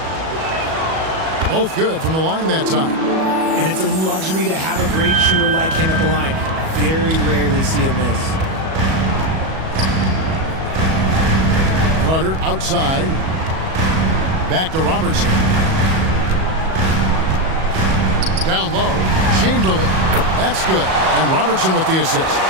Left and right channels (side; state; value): left; late; 37 ms